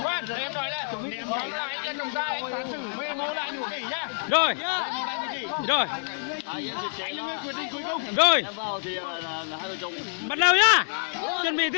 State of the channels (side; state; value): right; silent; digital silence